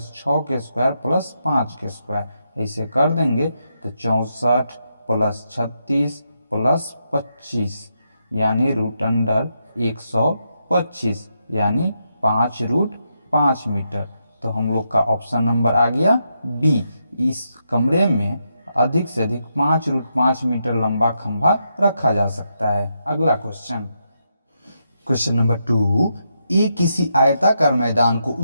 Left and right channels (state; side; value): inverted; both; correlation -0.82